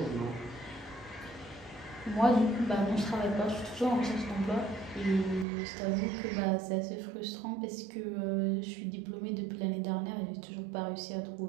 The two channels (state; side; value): drops out; left; at 5.5 s